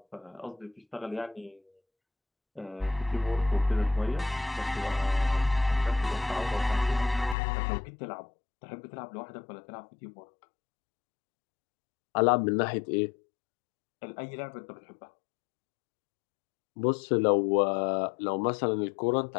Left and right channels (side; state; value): right; drops out; at 7.4 s